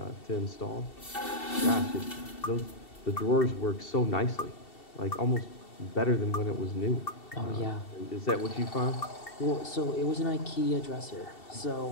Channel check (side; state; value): right; late; 2.7 ms